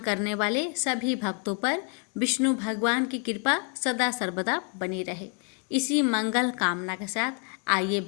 करने वाले सभी भक्तों पर विष्णु भगवान की कृपा सदा सर्वदा बनी रहे, इसी मंगल कामना के साथ आइए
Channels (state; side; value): quieter; right; 35.9 dB